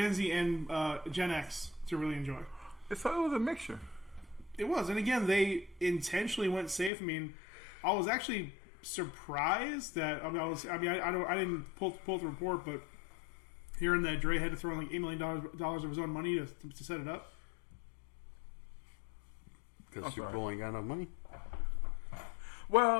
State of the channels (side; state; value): right; drops out; at 6.9 s